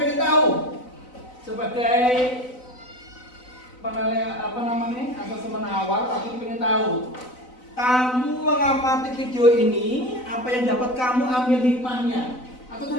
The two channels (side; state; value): right; late; 4.0 ms